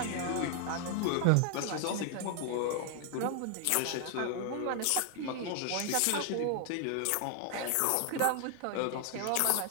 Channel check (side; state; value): both; different; correlation 0.00